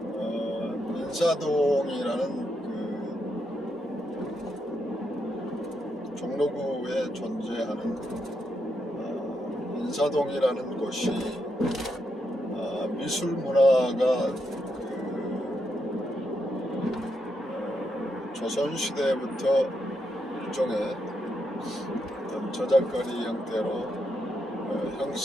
인사동이라는 종로구에 존재하는 인사동이라는 곳이 미술 문화가 조선시대부터 일종의 어떤 저작거리 형태로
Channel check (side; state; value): both; normal; correlation 0.81